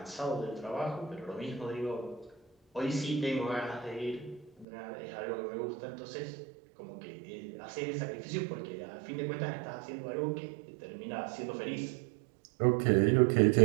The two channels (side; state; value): left; drops out; at 4.7 s